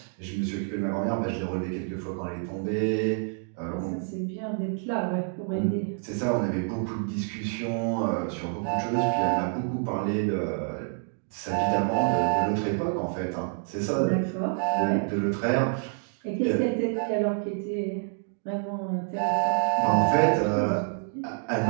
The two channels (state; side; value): silent; left; 56 dB below the other